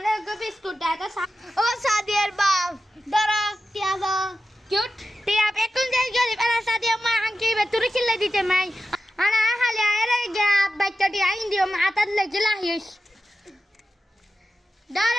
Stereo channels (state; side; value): normal; both; correlation 0.92